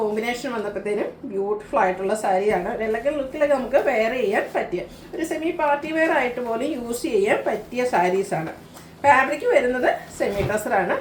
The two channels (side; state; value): both; identical; correlation 1.00